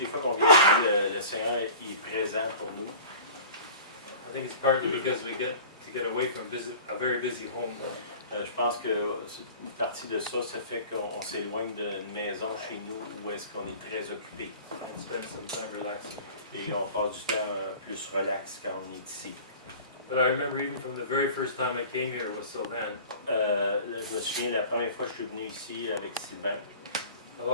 les fois qu'on vient ici, le Seigneur est présent pour nous. I think it's partly because we get to get away from a very busy home. Je pense que une partie de ça, ça fait qu'on s'éloigne d'une maison chez nous où est-ce qu'on est très occupé. And spend some time relaxing. Et on passe du temps plus relax quand on est ici. But I remember even from the very first time I came here with Sylvain, Je me souviens la première fois que je suis venu ici avec Sylvain, I've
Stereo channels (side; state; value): both; inverted; correlation -0.42